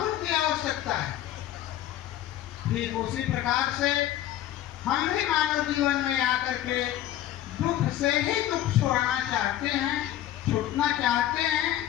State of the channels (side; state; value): right; quieter; 12.8 dB